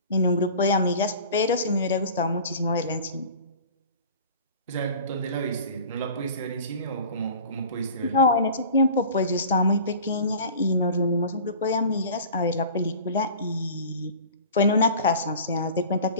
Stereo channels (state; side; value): inverted; both; correlation -0.41